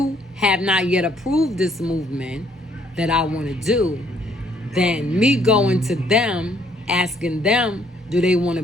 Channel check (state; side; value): normal; both; correlation 0.66